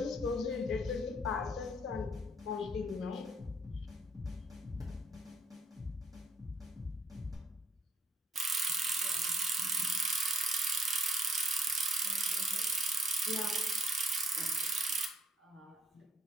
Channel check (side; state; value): both; normal; correlation 0.65